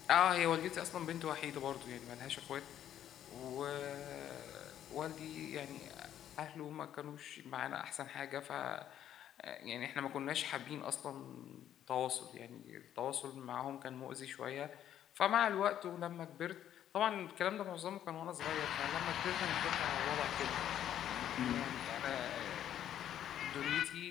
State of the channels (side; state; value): right; quieter; 10.8 dB